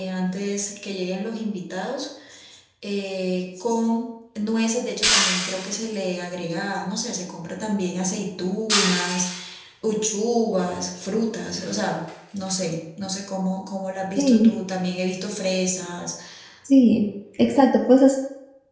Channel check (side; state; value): both; identical; correlation 1.00